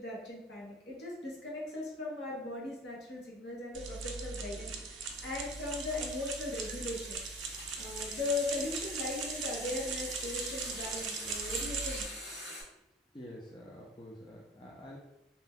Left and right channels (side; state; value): both; normal; correlation 0.40